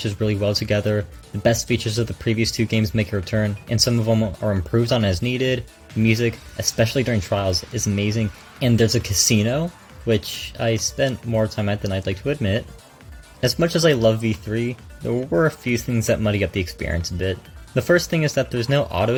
really well together, the best features of the previous 2 games make a return, and some of them are improved on as needed. The music, especially during trials, is amazing, and there's a casino, which I spent more time at than I'd like to admit. As much as I love V3, there were a few things that muddy up the experience a bit. The first thing is that there's no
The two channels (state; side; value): identical; both; correlation 1.00